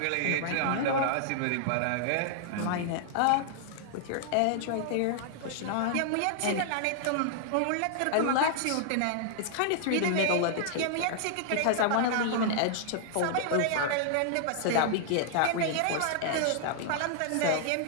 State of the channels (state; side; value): different; both; correlation -0.01